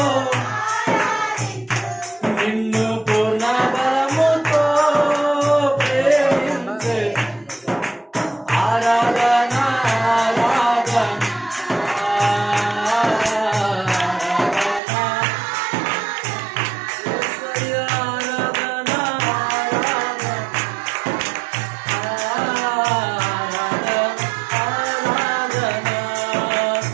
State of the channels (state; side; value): drops out; left; at 14.8 s